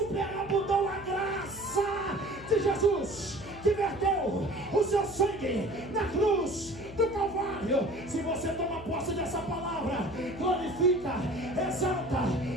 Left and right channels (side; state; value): left; noise; hum, 16 dB below the sound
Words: a graça de Jesus, que verteu o seu sangue na cruz do Calvário. Se você toma posse dessa palavra, glorifica, exalta